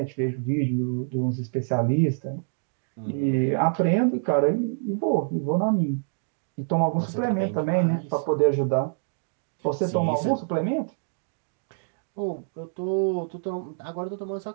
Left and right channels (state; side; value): silent; left; digital silence